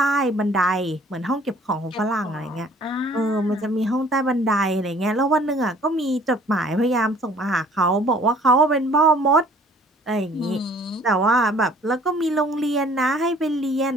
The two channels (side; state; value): both; normal; correlation 0.55